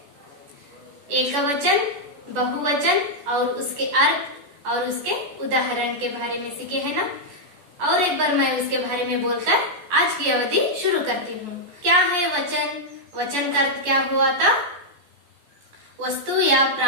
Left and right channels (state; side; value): late; left; 14 ms